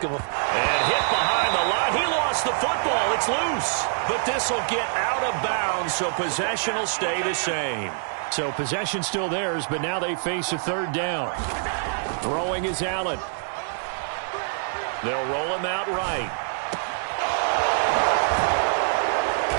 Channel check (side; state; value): left; silent; digital silence